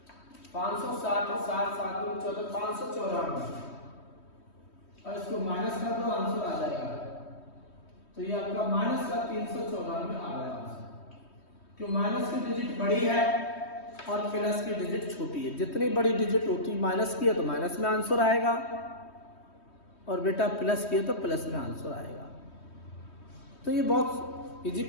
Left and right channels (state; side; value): late; right; 3.2 ms